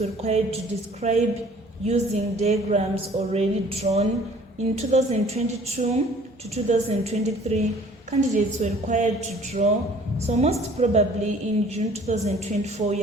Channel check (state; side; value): normal; both; correlation 0.53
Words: required to describe using diagrams already drawn. In 2022 to 2023, candidates were required to draw. So most probably in June 2024, you